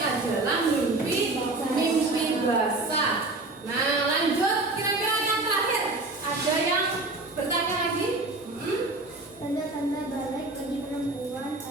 adalah mimpi basah. Nah, lanjut, kira-kira yang terakhir ada yang bertanya lagi? Tanda-tanda balik bagi perempuan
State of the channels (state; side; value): quieter; left; 3.0 dB